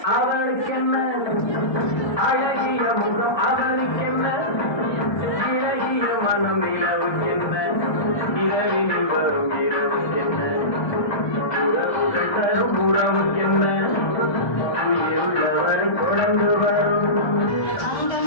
அவளுக்கென்ன அழகிய முகம், அவளுக்கென்ன இழகிய மனம், இரவுக்கென்ன இரவில் வரும் இரவுக்கென்ன உறவுகள் தரும் உறவுக்கென்ன உள்ளவர் குழந்து வரும்.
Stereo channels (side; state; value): right; late; 1.2 ms